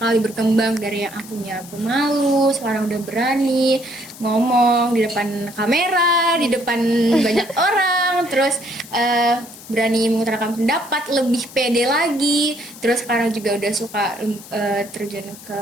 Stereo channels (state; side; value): noise; left; hiss, 17 dB below the sound